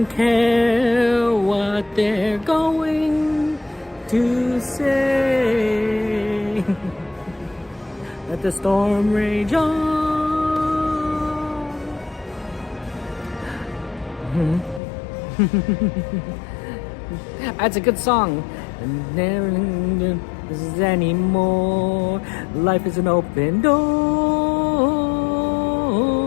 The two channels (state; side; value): drops out; right; at 14.8 s